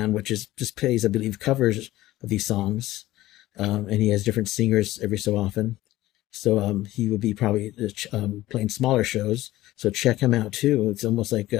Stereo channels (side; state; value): right; quieter; 16.3 dB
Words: which is just plays, I believe, covers of these songs, and he has different singers every so often. So he would be probably playing smaller shows. So check him out too. It's almost like